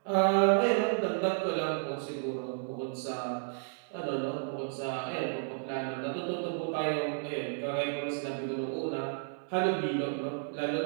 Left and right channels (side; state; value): left; silent; digital silence